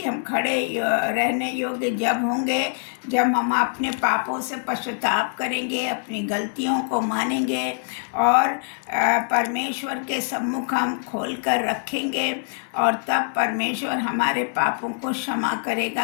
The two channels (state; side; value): silent; right; 63 dB below the other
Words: हम खड़े रहने योग्य जब होंगे जब हम अपने पापों से पश्चाताप करेंगे, अपनी गलतियों को मानेंगे और परमेश्वर के सम्मुख हम खोल कर रखेंगे, और तब परमेश्वर हमारे पापों को क्षमा